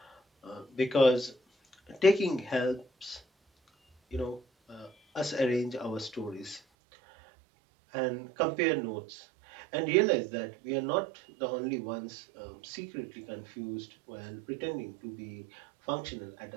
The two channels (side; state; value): left; drops out; at 6.6 s